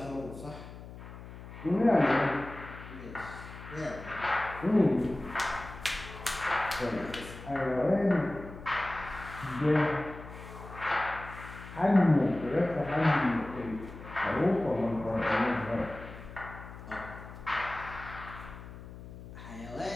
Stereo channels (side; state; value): left; noise; hum, 14 dB below the sound